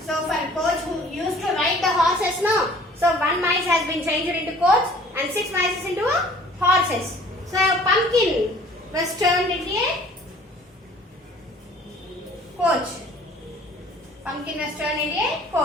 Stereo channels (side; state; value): both; normal; correlation 0.52